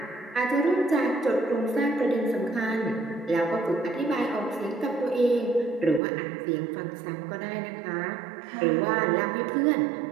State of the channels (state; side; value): drops out; left; at 6.0 s